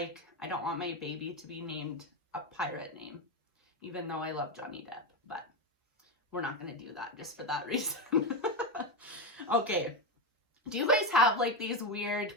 I don't want my baby to be named a pirate name. Even though I love Johnny Depp, but we're not going to do that just for that reason. Okay. Do you guys have like these weird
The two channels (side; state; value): both; normal; correlation 0.12